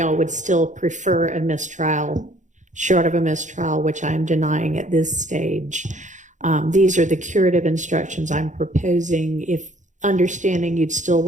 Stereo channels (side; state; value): left; late; 0.36 ms